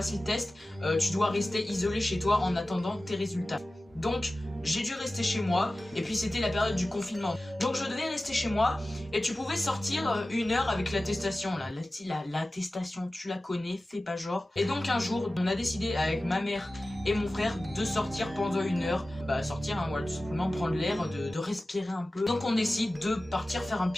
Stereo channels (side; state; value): both; normal; correlation 0.96